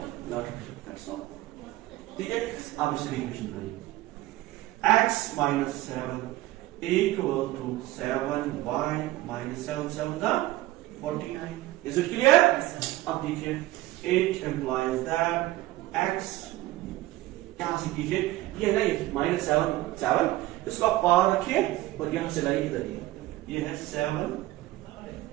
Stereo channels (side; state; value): left; quieter; 17.0 dB